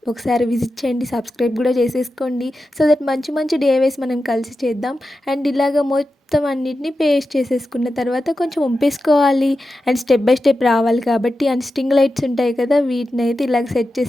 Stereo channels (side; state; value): both; normal; correlation 0.91